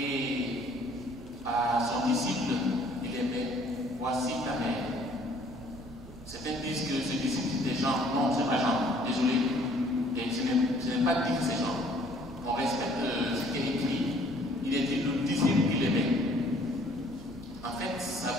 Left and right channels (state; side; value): noise; right; hum, 20 dB below the sound